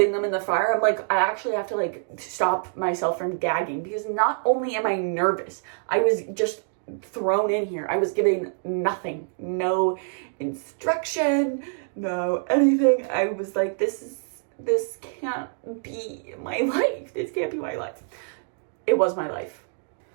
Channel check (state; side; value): silent; left; digital silence